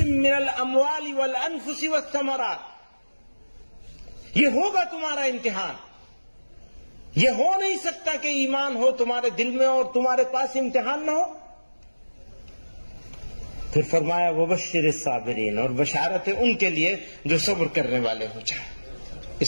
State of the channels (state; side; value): inverted; both; correlation -1.00